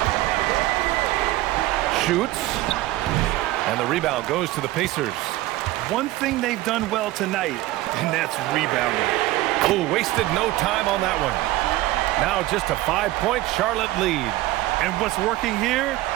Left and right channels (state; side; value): quieter; left; 17.0 dB